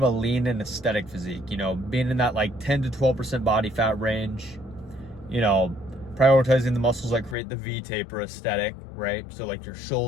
a lean and aesthetic physique, being in that like 10 to 12% body fat range, prioritizing the muscles that create the V-taper aesthetic, right? So like your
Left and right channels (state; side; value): drops out; right; at 7.4 s